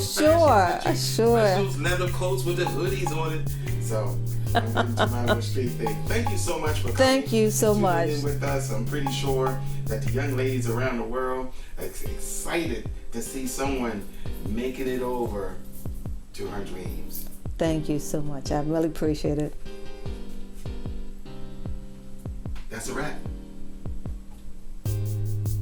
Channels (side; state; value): both; identical; correlation 1.00